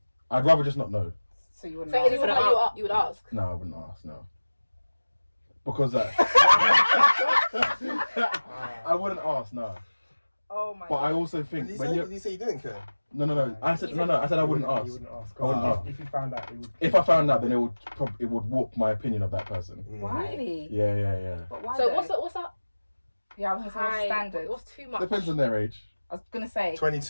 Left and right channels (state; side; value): inverted; both; correlation -1.00